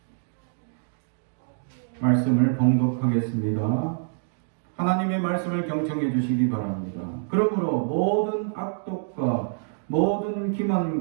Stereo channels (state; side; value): silent; left; digital silence